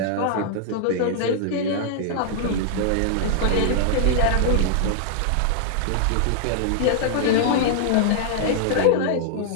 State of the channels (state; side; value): different; both; correlation -0.01